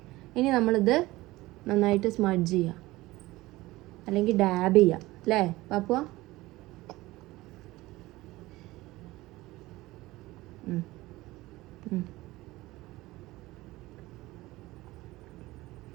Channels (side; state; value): left; quieter; 18.9 dB